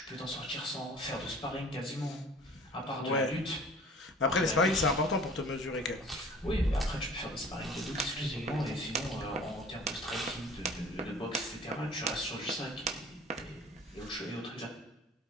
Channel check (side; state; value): both; normal; correlation 0.47